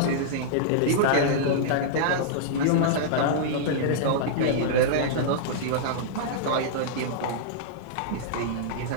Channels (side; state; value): both; different; correlation -0.02